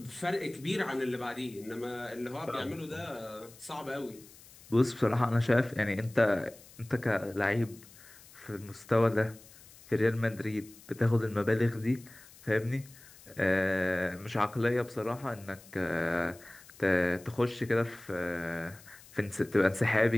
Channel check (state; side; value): noise; left; hiss, 22 dB below the sound